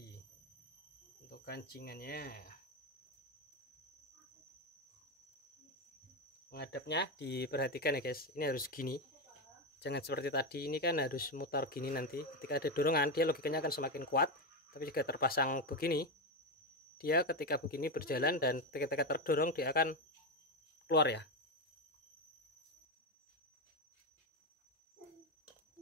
Untuk kancingannya. Menghadapnya diperhatikan ya guys, ini harus gini, jangan seperti tadi. Ini kan harus mutar gini, nanti ketika ada dorongan dia logikanya akan semakin kuat. Tapi jika terpasang begini, dia ketika begini berjalan dan ketika terdorong dia akan keluar ya.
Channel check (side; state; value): both; normal; correlation 0.10